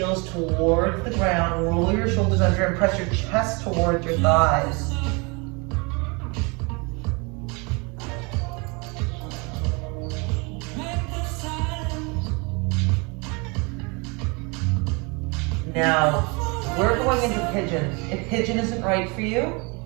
towards the ground. Roll your shoulders under and press your chest towards your thighs. Now, we're going into pigeon. If pigeon isn't right for you,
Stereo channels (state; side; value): quieter; left; 29.8 dB